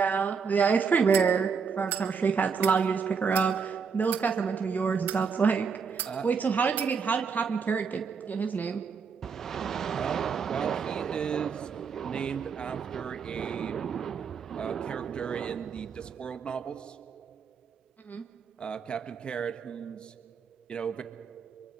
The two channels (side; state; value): left; quieter; 5.8 dB